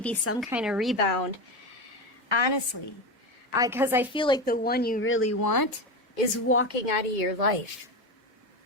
some kind of rebound. Honestly. Because I feel like the one you really want is walking out of your life.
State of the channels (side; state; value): both; normal; correlation 0.19